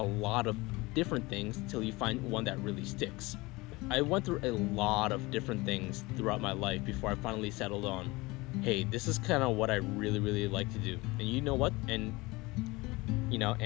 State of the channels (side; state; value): right; quieter; 22.6 dB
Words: lot of different things until you find one that really sticks. I went through a lot of different things throughout my life before I finally settled on, hey, this is kind of what I really, really like to do. And you know what? And, you know,